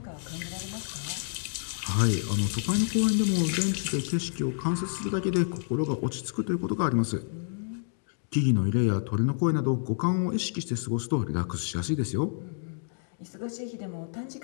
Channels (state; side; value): silent; right; digital silence